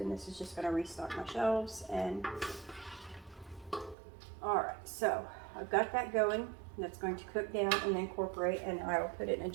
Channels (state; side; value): drops out; left; at 4.0 s